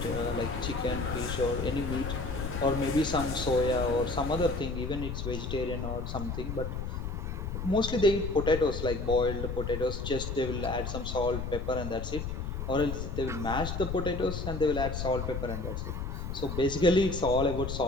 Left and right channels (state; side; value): noise; left; rumble, 4 dB below the sound